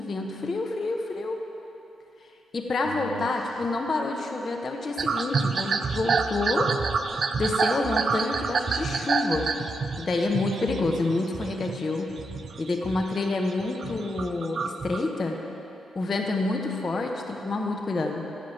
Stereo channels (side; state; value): both; normal; correlation 0.82